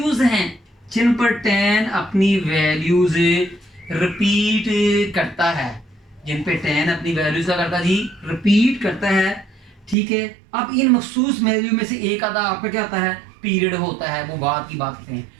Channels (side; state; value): left; drops out; at 10.0 s